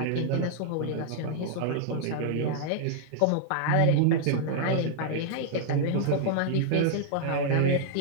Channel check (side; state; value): both; different; correlation -0.01